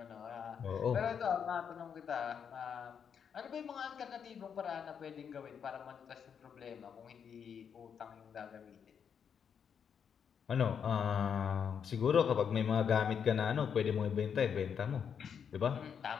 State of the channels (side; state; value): right; quieter; 7.4 dB